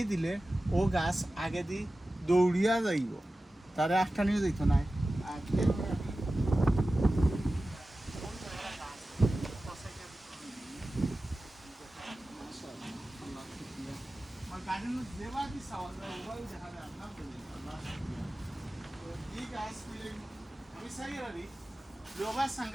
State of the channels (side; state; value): both; normal; correlation 0.95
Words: দিলে ও গাছ আগে দি দৌড়িয়া যাইব তারে আটটানিও যাইতো না আর আমি চাই আর লোবা